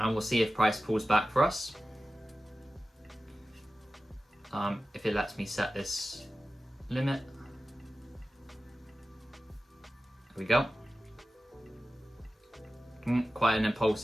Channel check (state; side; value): normal; both; correlation 0.95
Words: we'll see if price pulls back for us. If it lets me set this limit. There we go. Quite an